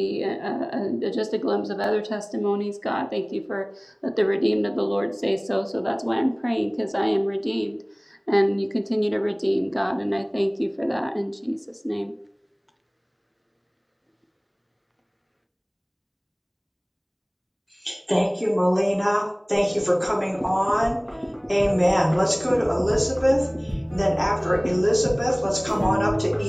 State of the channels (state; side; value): identical; both; correlation 1.00